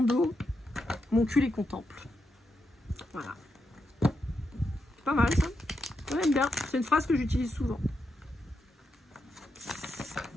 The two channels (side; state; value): both; normal; correlation 0.85